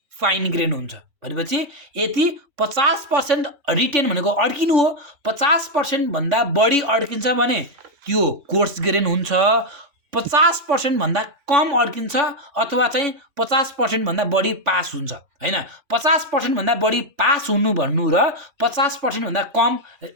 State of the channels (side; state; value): left; late; 3.5 ms